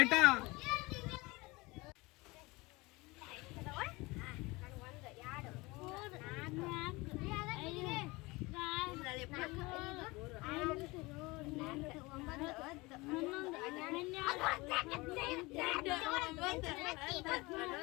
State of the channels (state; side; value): quieter; right; 23.3 dB